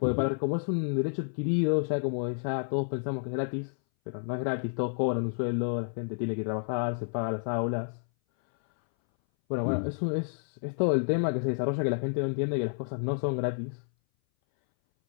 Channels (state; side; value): silent; right; 58 dB below the other